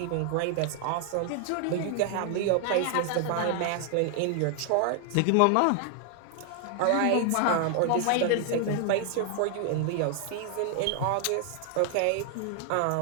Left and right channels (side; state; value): both; different; correlation 0.00